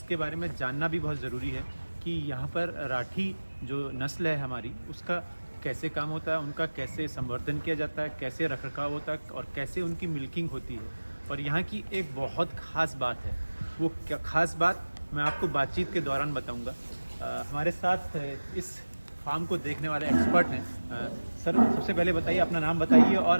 बारे में जानना भी बहुत ज़रूरी है कि यहाँ पर राठी जो नस्ल है हमारी उसका कैसे काम होता है, उनका कैसे संवर्धन किया जाता है, कैसे रखरखाव होता है और कैसे उनकी मिल्किंग होती है। और यहाँ की एक बहुत ख़ास बात है, वो क्या ख़ास बात मैं आपको बातचीत के दौरान बताऊँगा। हमारे साथ इस फार्म को देखने वाले एक्सपर्ट हैं। सर, सबसे पहले बताइए, अपना नाम बताइए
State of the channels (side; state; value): both; inverted; correlation -1.00